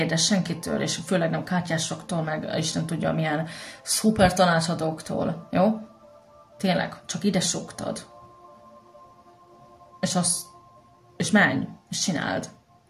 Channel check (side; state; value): both; identical; correlation 1.00